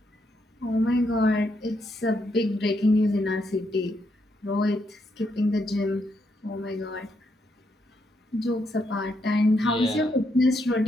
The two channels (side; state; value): both; normal; correlation 0.78